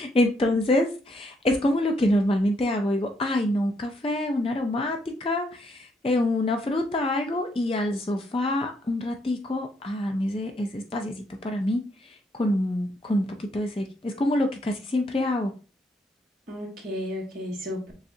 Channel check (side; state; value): both; normal; correlation 0.73